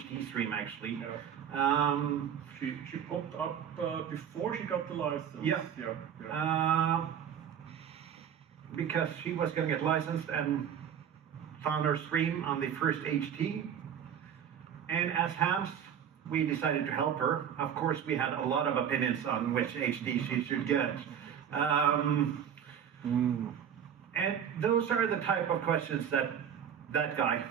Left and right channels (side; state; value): left; quieter; 8.7 dB